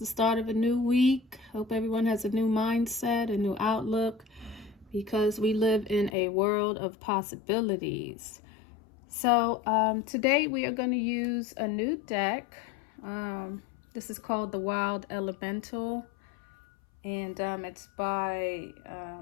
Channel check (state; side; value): drops out; right; at 6.1 s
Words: start of a new week. Hope everyone has a new mindset, a new outlook, because we live in a world of possibilities. So today we are going to use a new deck. This is called the Wild Elemental, and it's by